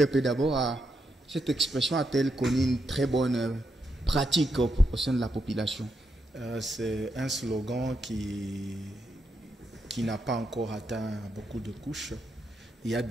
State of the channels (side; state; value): both; normal; correlation 0.82